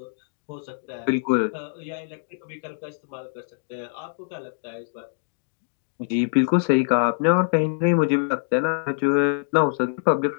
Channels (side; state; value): right; silent; digital silence